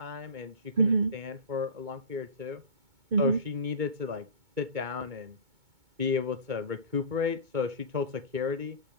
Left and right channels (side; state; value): left; late; 2.2 ms